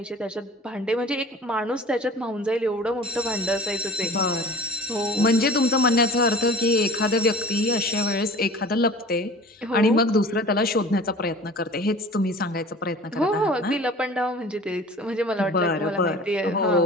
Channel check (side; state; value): both; normal; correlation 0.41